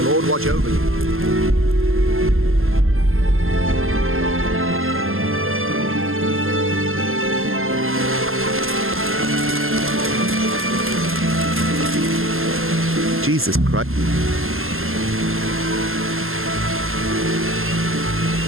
Lord watch over you. Jesus Christ.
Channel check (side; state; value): left; late; 0.61 ms